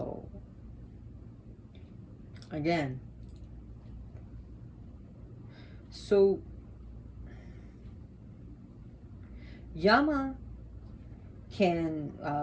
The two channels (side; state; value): both; identical; correlation 1.00